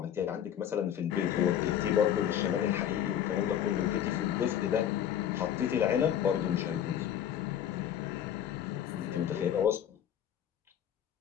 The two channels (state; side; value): quieter; right; 10.1 dB